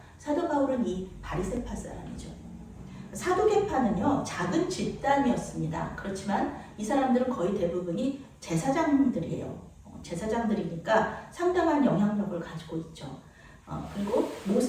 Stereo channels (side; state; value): both; identical; correlation 1.00